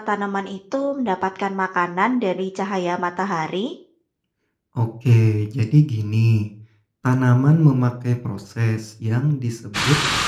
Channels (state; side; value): identical; both; correlation 1.00